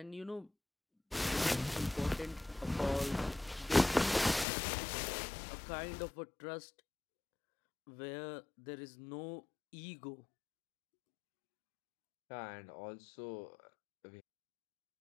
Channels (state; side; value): drops out; right; at 4.5 s